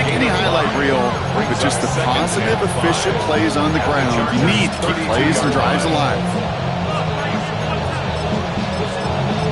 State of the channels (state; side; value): identical; both; correlation 1.00